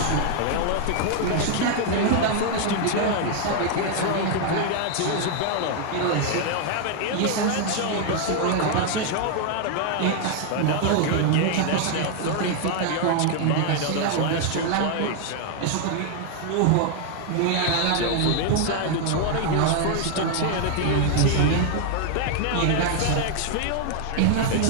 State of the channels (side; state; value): both; different; correlation 0.00